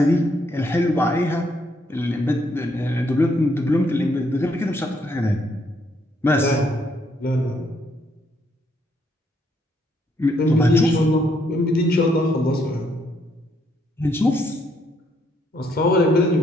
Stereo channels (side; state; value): both; normal; correlation 0.72